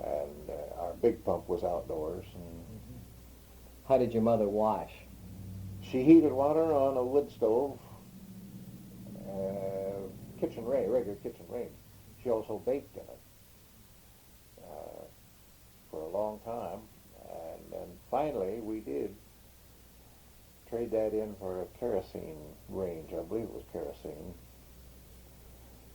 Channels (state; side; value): identical; both; correlation 1.00